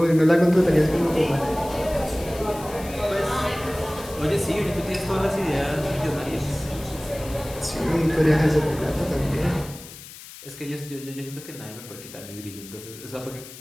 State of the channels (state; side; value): noise; left; hiss, 16 dB below the sound